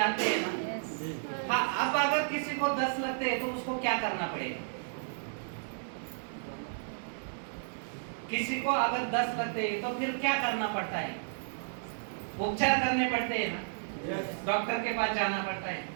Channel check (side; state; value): left; silent; 56 dB below the other